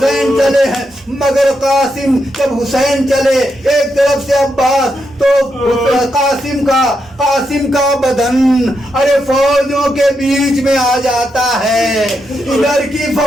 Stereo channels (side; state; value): both; normal; correlation 0.83